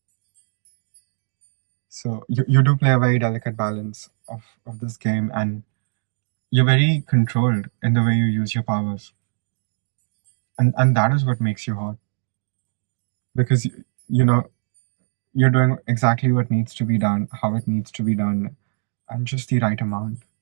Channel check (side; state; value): left; silent; digital silence